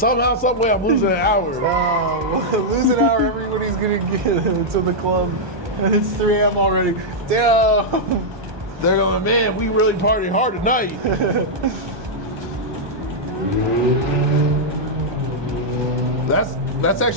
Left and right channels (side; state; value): left; late; 1.2 ms